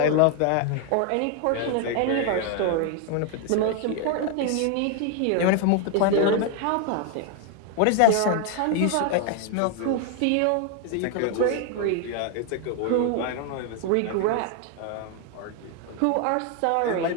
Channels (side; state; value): both; different; correlation 0.00